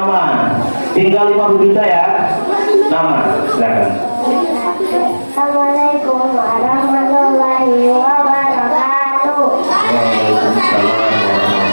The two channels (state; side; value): inverted; both; correlation -1.00